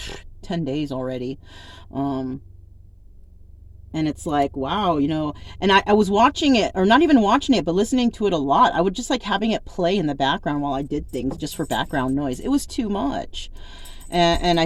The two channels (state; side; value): identical; both; correlation 1.00